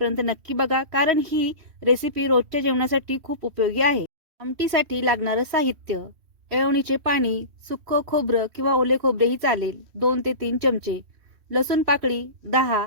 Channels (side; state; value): left; late; 3.1 ms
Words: नक्की बघा, कारण ही रेसिपी रोजच्या जेवणासाठी खूप उपयोगी आहे. आमटीसाठी लागणारं साहित्य: येळवणीचे पाणी, सुक्कं खोबरं किंवा ओले खोबरेही चालेल 2 ते 3 चमचे, लसूण पाकळी 10,